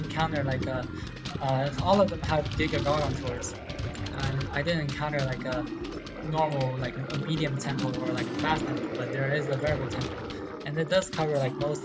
like a all of them have Giga Garg tours, and I didn't encounter like a normal like a medium tempo or like a fast tempo, but there is a variable tempo, and it does cover like most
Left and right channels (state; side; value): identical; both; correlation 1.00